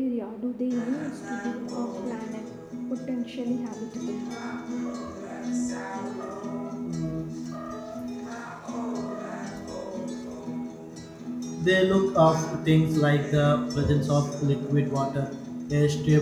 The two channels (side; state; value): both; identical; correlation 1.00